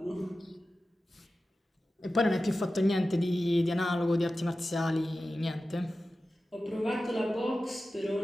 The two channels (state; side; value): normal; both; correlation 0.94